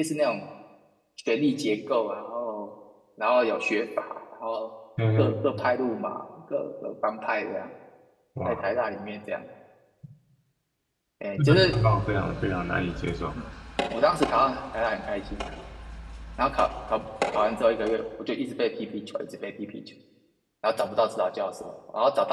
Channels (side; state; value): both; identical; correlation 1.00